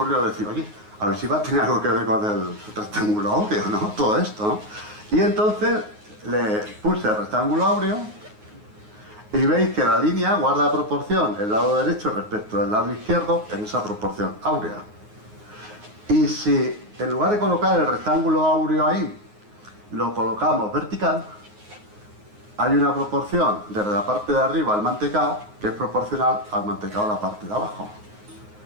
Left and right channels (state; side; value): late; left; 9.5 ms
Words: decir, oye, a ver si va a tener algo que ver con el rectángulo áureo, ¿no? Todo esto, ¿no? Y entonces le puse el rectángulo áureo y veis que la línea guarda proporción el lado derecho respecto al lado izquierdo en esa proporción áurea. Y si en lugar de colocar el rectángulo áureo ahí, lo colocamos vertical, hay una proporción desde la parte de arriba al mantecao que es proporcional al mantecao a la parte de abajo.